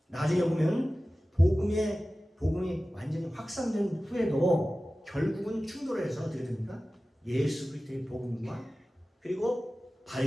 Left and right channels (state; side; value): normal; both; correlation 0.96